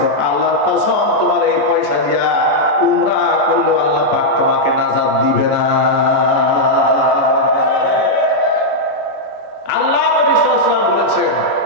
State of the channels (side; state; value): right; late; 14 ms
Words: আল্লাহর কসম তোমার এই পয়সা দিয়া উমরা করলেও আল্লাহ পাক তোমাকে নাজাত দিবে না। আল্লাহ নবী সাল্লাল্লাহু আলাইহি ওয়াসাল্লাম বলেছেন,